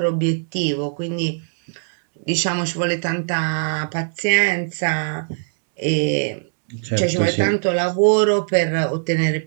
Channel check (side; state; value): left; silent; digital silence